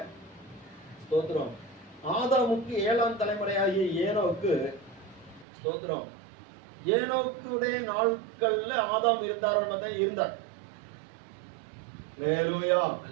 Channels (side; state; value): left; drops out; at 5.5 s